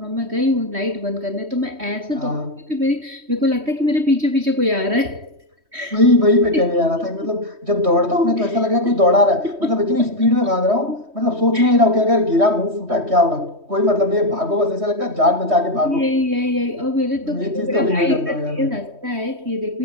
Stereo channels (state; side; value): late; left; 3.2 ms